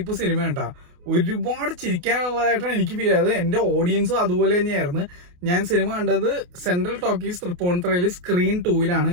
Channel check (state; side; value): late; left; 28 ms